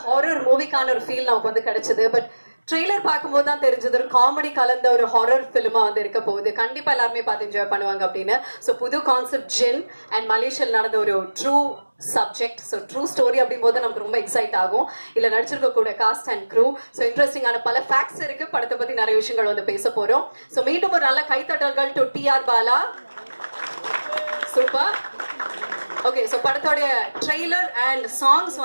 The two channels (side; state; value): both; inverted; correlation -1.00